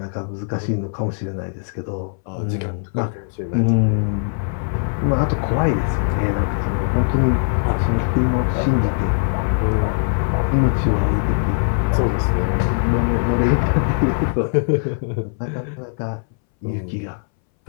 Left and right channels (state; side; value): silent; right; 63 dB below the other